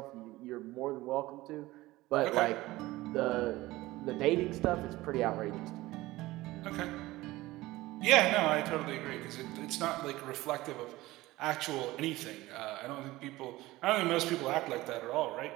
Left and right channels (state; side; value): quieter; left; 18.4 dB